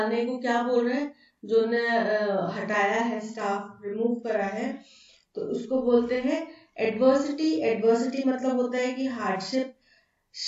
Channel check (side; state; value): both; identical; correlation 1.00